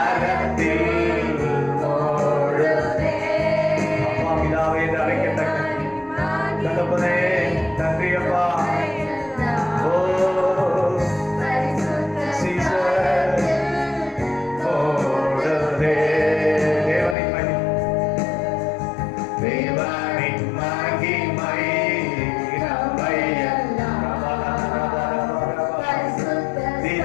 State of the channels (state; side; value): drops out; right; at 17.2 s